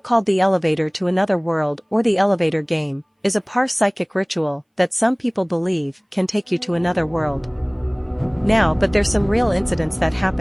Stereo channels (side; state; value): both; identical; correlation 1.00